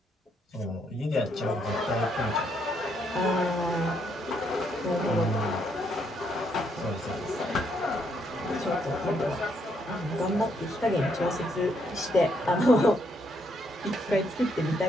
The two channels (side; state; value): both; normal; correlation 0.74